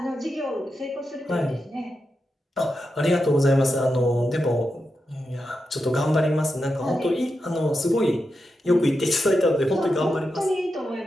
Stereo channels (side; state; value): both; normal; correlation 0.88